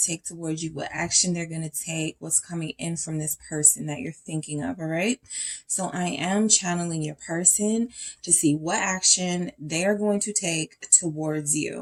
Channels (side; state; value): both; identical; correlation 1.00